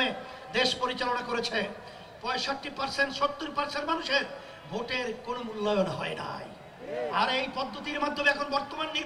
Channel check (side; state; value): both; identical; correlation 1.00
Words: দেশ পরিচালনা করেছে, 65% 70% মানুষের ভোটের কোনো মূল্যায়ন হয় নাই। আর এই পদ্ধতির মাধ্যমে এখন বর্তমান